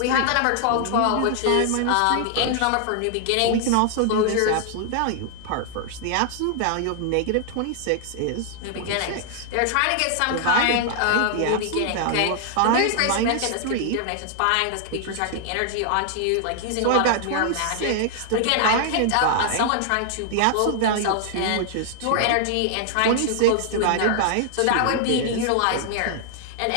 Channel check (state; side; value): different; both; correlation -0.01